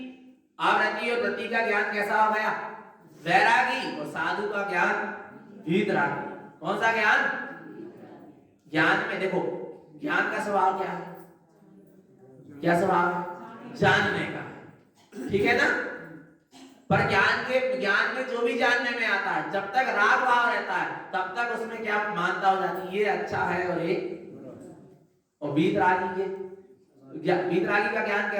अव्रती और व्रती का ज्ञान कैसा हो गया? वैरागी। और साधु का ज्ञान वीतरागी। कौन सा ज्ञान? ज्ञान में देखो, ज्ञान का स्वभाव क्या है? क्या स्वभाव है? जानने का, ठीक है ना? पर ज्ञान में जो भी जानने में आता है, जब तक राग भाव रहता है तब तक उसमें क्या मानता हो जाती है? ये अच्छा है और ये, और वीतरागी का ज्ञान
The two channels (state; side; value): identical; both; correlation 1.00